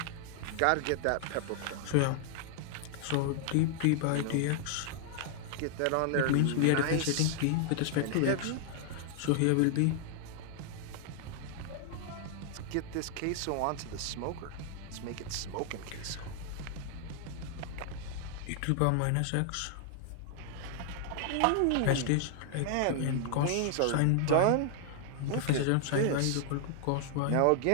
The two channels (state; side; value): different; both; correlation 0.00